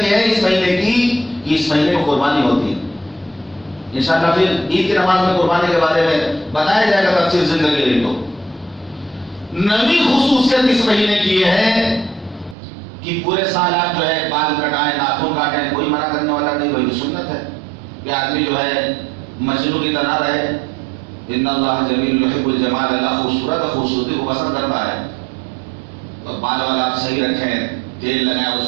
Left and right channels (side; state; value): left; drops out; at 12.6 s